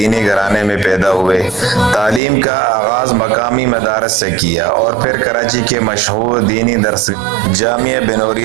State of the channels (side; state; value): left; drops out; at 2.2 s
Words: گھرانے میں پیدا ہوئے۔ تعلیم کا آغاز مقامی مدارس سے کیا اور پھر کراچی کے مشہور دینی درسگاہ جامعہ